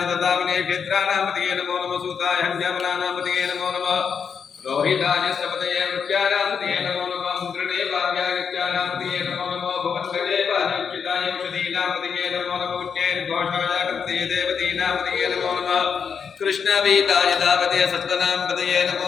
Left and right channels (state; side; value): quieter; right; 6.5 dB